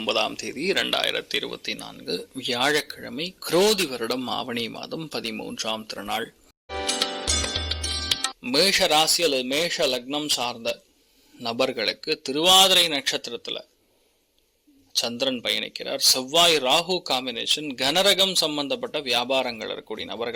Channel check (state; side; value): identical; both; correlation 1.00